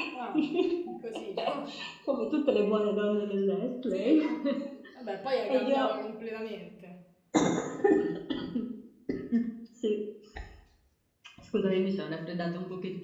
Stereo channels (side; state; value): both; identical; correlation 1.00